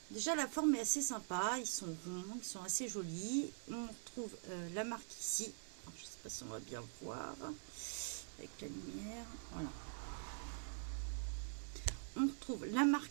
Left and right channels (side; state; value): left; silent; digital silence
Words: déjà la forme est assez sympa, ils sont ronds, ils sont assez jolis. On retrouve la marque ici. Alors, je ne sais pas si on va bien voir avec la lumière. Voilà. On retrouve la marque